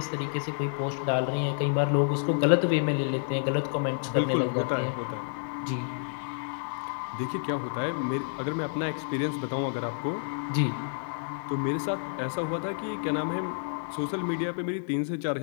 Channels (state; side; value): silent; right; digital silence